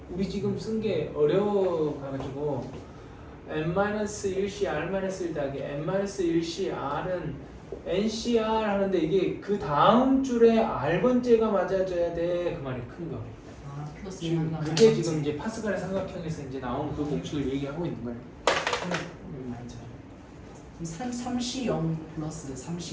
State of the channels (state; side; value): identical; both; correlation 1.00